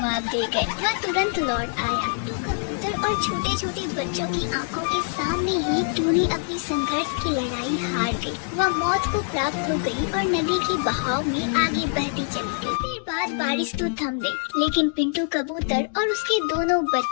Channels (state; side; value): silent; right; 58 dB below the other